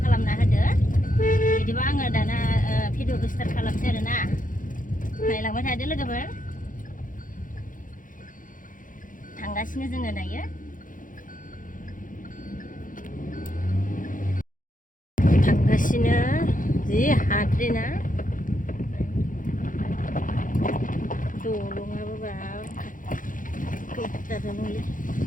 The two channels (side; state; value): right; late; 0.39 ms